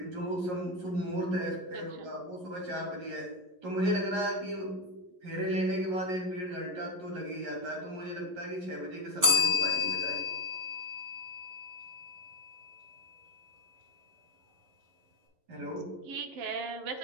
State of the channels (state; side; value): late; left; 11 ms